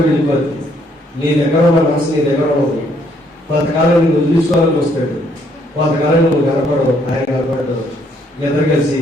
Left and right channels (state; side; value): normal; both; correlation 0.69